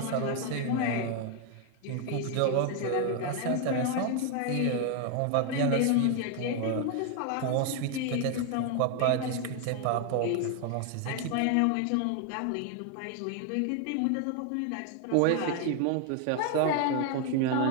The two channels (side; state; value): both; different; correlation 0.01